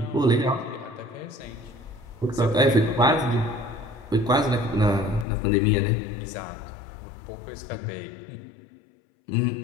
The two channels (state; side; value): drops out; right; at 5.2 s